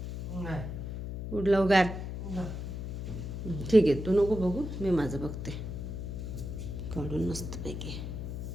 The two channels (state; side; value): noise; left; hum, 6 dB below the sound